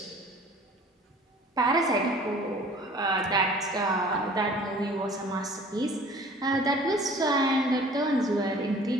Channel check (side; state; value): both; normal; correlation 0.49